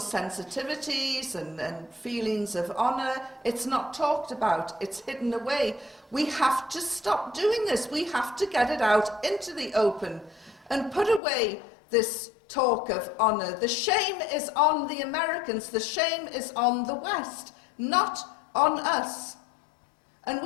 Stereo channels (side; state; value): right; drops out; at 11.2 s